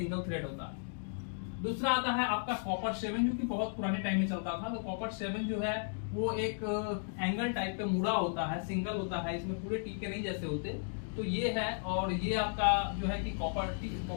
थ्रेड होता है। दूसरा आता है आपका कॉपर 7, जो कि बहुत पुराने टाइम में चलता था। तो कॉपर 7 जो है वो एक एंगल टाइप पे मुड़ा होता है, सिंगल होता है, इसमें पूरे टी के नहीं जैसे होते। तो ये है, और ये आपका जो है कि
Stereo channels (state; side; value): silent; right; digital silence